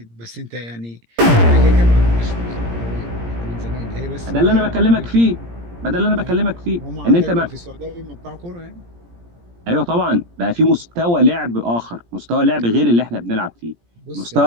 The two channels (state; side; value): late; left; 17 ms